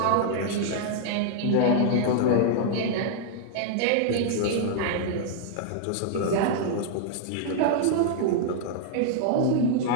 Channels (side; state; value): both; different; correlation -0.01